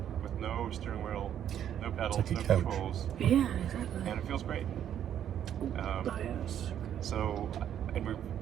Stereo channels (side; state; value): left; quieter; 9.9 dB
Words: with no steering wheel, no pedals, like a no couch. controls, Yeah, exactly. and it feels great. Oh, yes. So, and we